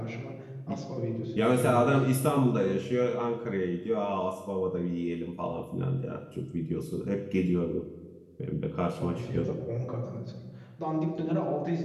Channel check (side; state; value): both; identical; correlation 1.00